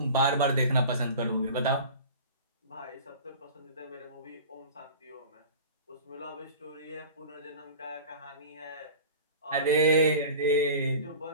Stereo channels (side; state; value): both; inverted; correlation -0.38